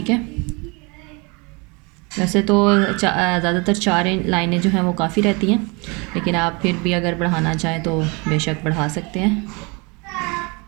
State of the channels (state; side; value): quieter; left; 29.2 dB